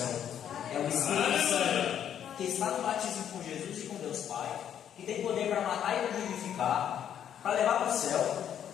É o Espírito Santo que está no batismo com Jesus e com Deus Pai, que tem poder para matar e para vivificar, para levar para o céu.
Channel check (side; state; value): right; quieter; 9.6 dB